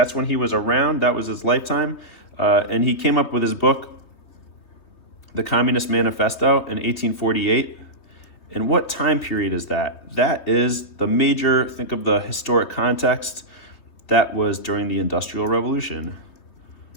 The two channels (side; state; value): right; late; 3.0 ms